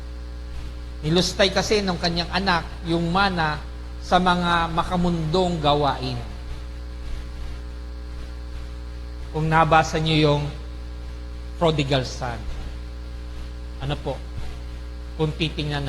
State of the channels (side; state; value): both; identical; correlation 1.00